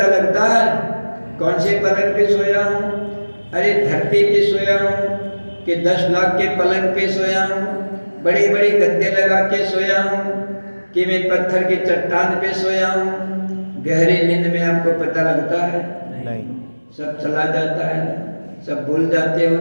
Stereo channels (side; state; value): both; inverted; correlation -1.00